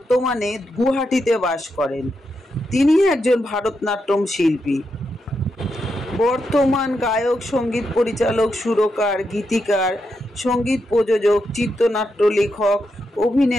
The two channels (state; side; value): normal; both; correlation 0.84